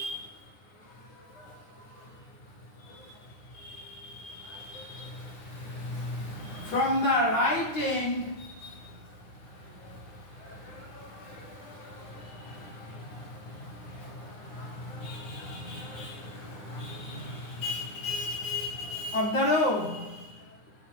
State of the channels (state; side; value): late; right; 9.7 ms